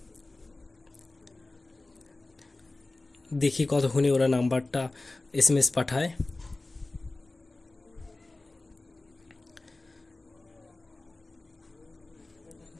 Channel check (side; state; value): right; quieter; 3.0 dB